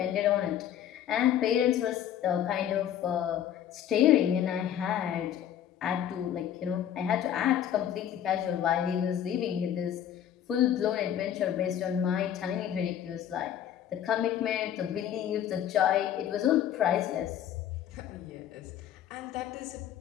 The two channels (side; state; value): right; quieter; 10.2 dB